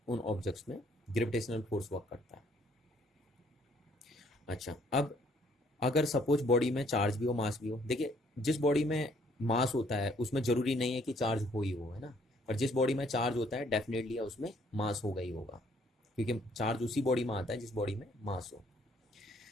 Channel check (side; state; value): both; normal; correlation 0.64